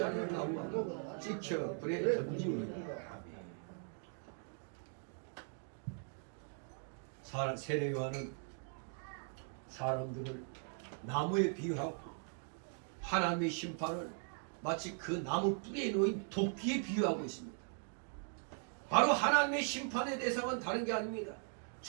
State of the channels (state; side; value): silent; left; 51 dB below the other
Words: 않은 나무는 찍혀 불에 던지우리라. 세례 요한은 사람들을 나무에 비유하고 하나님의 심판을 마치 그 나무 뿌리에 놓인 도끼에 비유하고 있습니다. 바로 하나님의 심판의 대상은 다른 게 아닙니다.